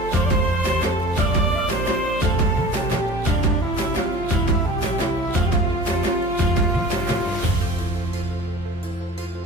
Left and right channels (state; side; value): normal; both; correlation 0.41